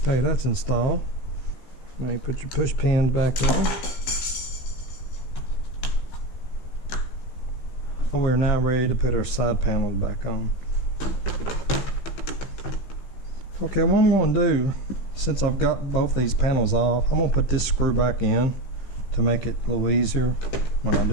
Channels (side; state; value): right; late; 15 ms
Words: Okay, that's installed. Now you put your push pins back in. We're now ready to put our side panels back on. Okay, what I'm going to do, since I've got both these panels off, I'm going to put this screw back in to make it a little easier when I